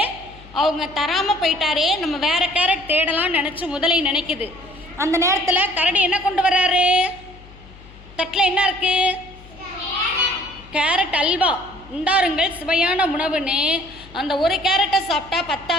அவங்க தராமல் போயிட்டாரே, நம்ம வேறு கேரட் தேடலாம்னு நினச்சி முதலை நினைக்குது. அந்த நேரத்தில் கரடி என்ன கொண்டு வர்றாரு? தட்டில் என்ன இருக்கு? கேரட் அல்வா. உண்டாருங்கள் சுவையான உணவுன்னு அந்த ஒரு கேரட்டை சாப்பிட்டா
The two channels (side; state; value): left; noise; hum, 21 dB below the sound